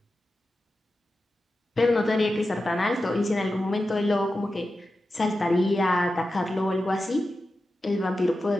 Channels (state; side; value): normal; both; correlation 0.92